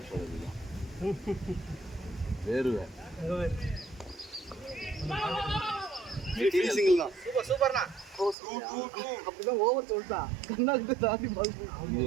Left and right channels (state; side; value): drops out; left; at 8.3 s